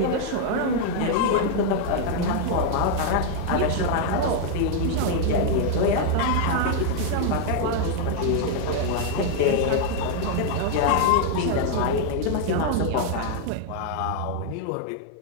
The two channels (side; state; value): both; different; correlation 0.00